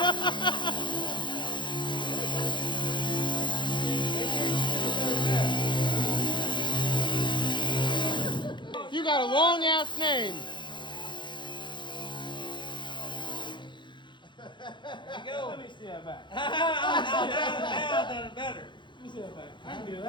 You got a long ass name. There you go. Let me see that back. Now I've done it better. Let me see that back. I can do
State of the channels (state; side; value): late; right; 0.23 ms